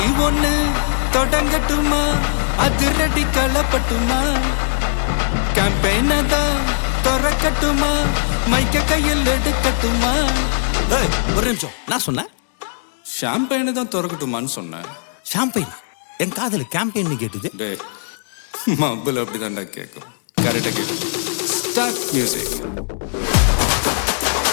ஒண்ணு தொடங்கட்டுமா அதிரடி களப்பட்டுமா கேம்பெயின தான் திறக்கட்டுமா மைக்க கையில் எடுக்கட்டுமா ஒரு நிமிஷம் நான் சொன்னேன் ஷாம்பெயினை தான் திறக்கட்டுமான்னு சொன்னேன் ஷாம்பெயினா என் காதல் கேம்பெயின் கேட்டுது டே மப்பிள் அப்படிதான்டா கேட்கும் கரெக்டாக கேட்கும் ஸ்டார்ட் மியூசிக்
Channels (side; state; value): right; silent; digital silence